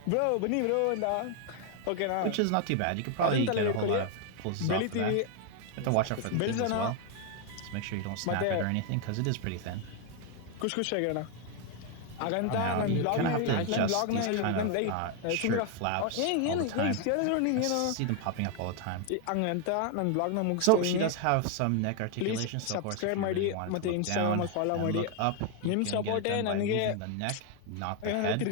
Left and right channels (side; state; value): both; different; correlation 0.01